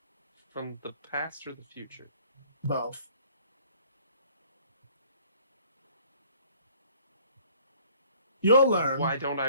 From the past or the future? both. You'll learn. Why don't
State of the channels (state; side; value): inverted; both; correlation -0.56